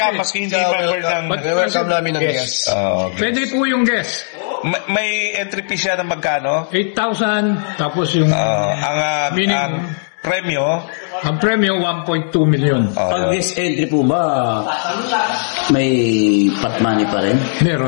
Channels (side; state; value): right; silent; 68 dB below the other